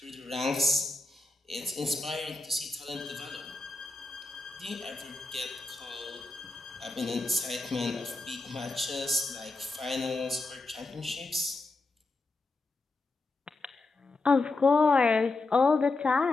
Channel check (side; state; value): right; quieter; 3.3 dB